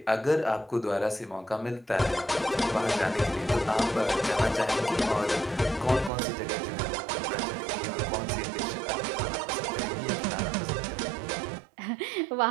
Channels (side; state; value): left; drops out; at 6.1 s